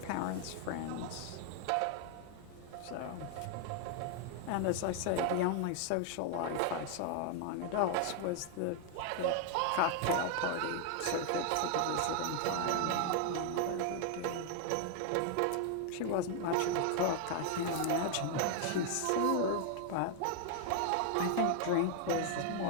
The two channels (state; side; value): different; both; correlation 0.00